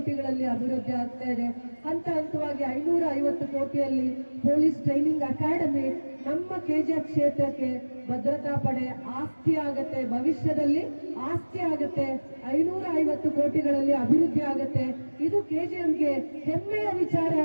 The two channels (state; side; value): inverted; both; correlation -1.00